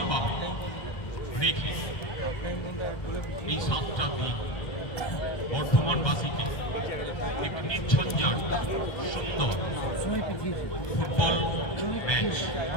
রেখে এই 7টা দিন বর্ধমানবাসীকে এক নির্ঝঞ্ঝাট সুন্দর ফুটবল ম্যাচ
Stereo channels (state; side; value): late; right; 1.3 ms